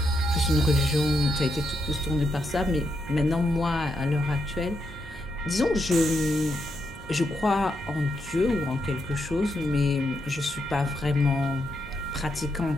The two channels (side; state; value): left; noise; hum, 20 dB below the sound